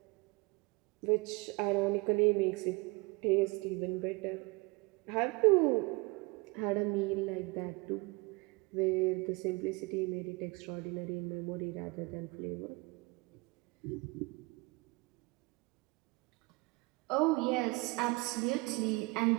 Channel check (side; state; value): left; quieter; 26.2 dB